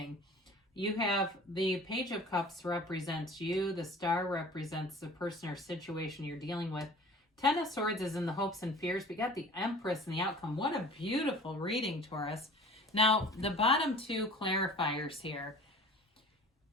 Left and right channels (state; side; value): normal; both; correlation 0.44